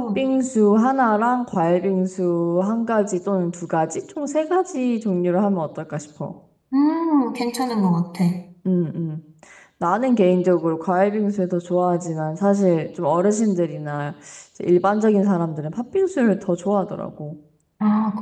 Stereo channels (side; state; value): both; identical; correlation 1.00